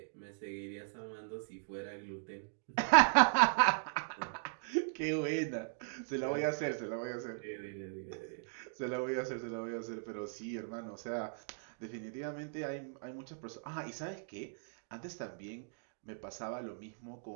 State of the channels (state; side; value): silent; left; digital silence